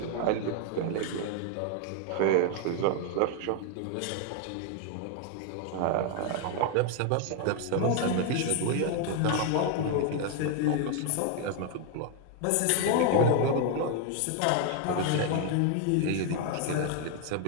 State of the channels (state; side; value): different; both; correlation 0.01